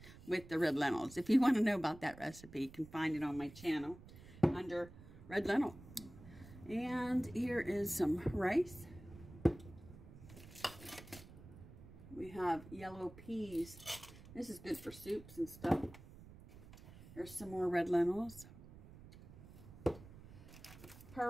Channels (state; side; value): noise; right; rumble, 17 dB below the sound